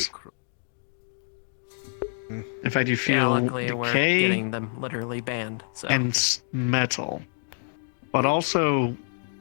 In fact, you feel luckily we're decay getting them literally banned. So. and metal, but also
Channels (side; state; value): right; silent; 60 dB below the other